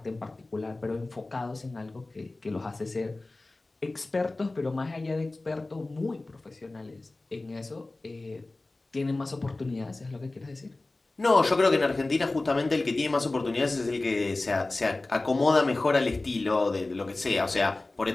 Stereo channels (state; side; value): quieter; right; 3.0 dB